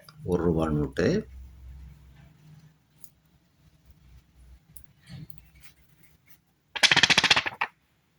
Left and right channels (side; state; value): both; identical; correlation 1.00